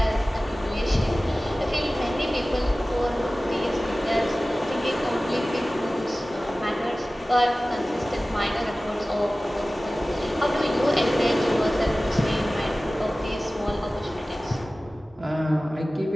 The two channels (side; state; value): both; normal; correlation 0.97